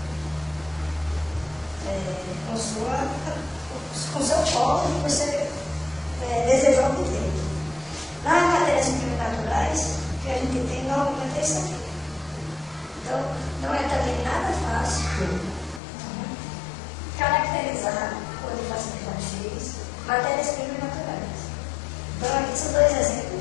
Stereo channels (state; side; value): drops out; right; at 15.8 s